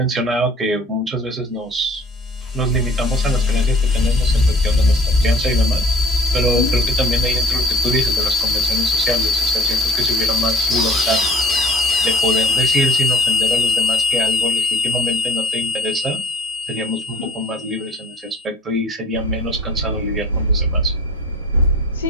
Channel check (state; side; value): normal; both; correlation 0.50